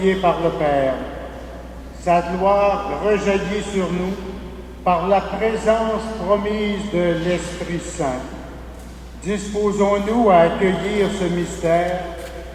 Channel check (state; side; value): identical; both; correlation 1.00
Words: par le Père. Sa gloire rejaillit sur nous par la présence promise de l'Esprit Saint. Disposons-nous à accueillir ce mystère